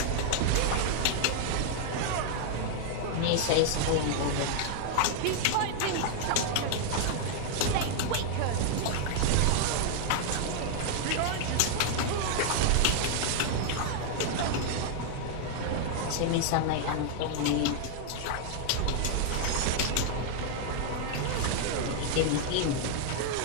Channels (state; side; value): different; both; correlation 0.00